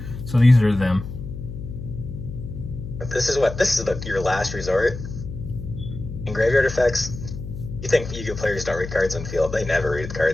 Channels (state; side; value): noise; left; hum, 9 dB below the sound